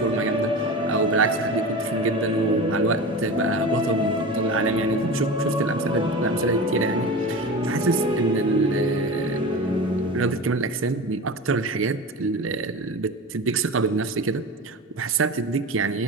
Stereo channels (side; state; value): both; normal; correlation 0.29